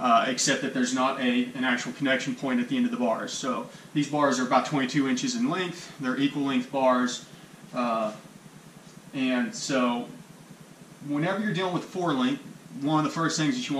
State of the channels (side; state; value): both; identical; correlation 1.00